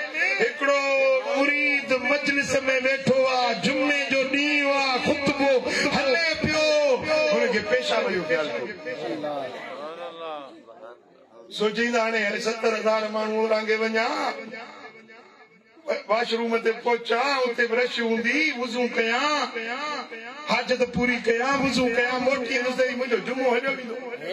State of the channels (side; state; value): both; identical; correlation 1.00